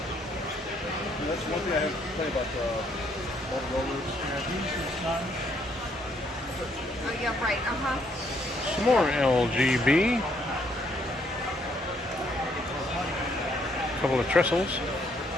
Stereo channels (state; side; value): normal; both; correlation 0.69